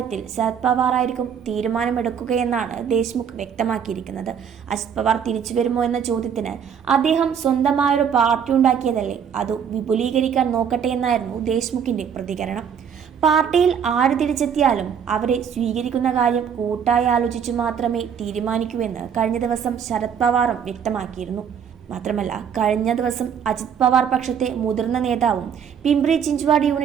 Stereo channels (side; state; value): left; quieter; 7.7 dB